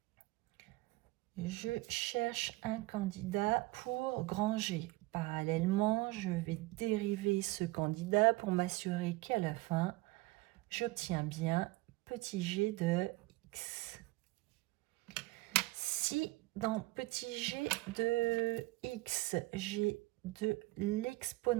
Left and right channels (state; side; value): quieter; left; 20.9 dB